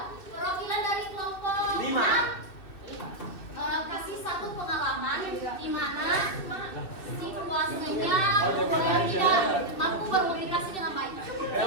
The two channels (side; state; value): right; late; 2.6 ms